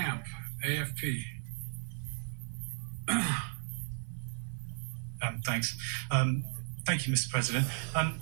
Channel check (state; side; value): silent; left; 54 dB below the other